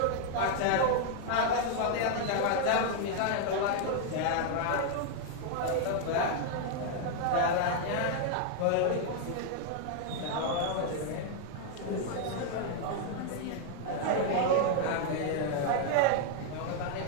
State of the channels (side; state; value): both; different; correlation 0.00